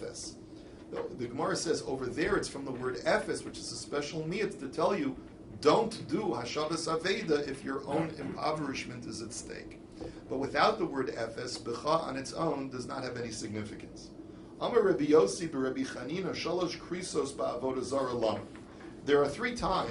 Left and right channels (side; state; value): both; identical; correlation 1.00